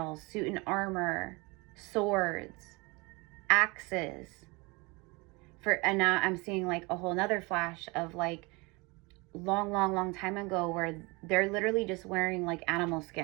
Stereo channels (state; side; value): quieter; left; 26.3 dB